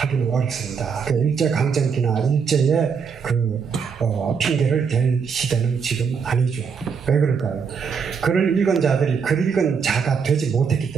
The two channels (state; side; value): quieter; left; 6.1 dB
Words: 어렵습니다. 일제강점기나 일제의 핑계를 댈 시대는 지금 아니죠. 왜 그럴까요? 글을 읽은 자들이 글 읽은 자가 되지 못했기